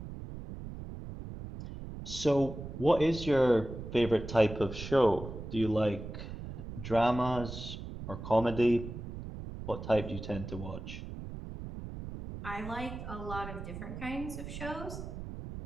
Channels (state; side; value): noise; right; rumble, 9 dB below the sound